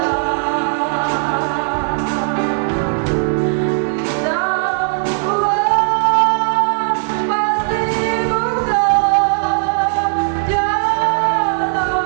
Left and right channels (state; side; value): silent; left; 63 dB below the other